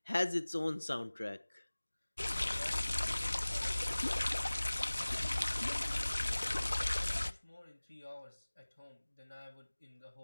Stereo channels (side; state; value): both; inverted; correlation -1.00